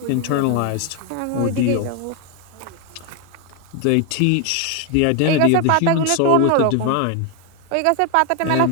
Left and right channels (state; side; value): different; both; correlation 0.01